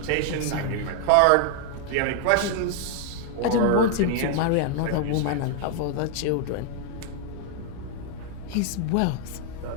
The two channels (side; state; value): both; different; correlation 0.00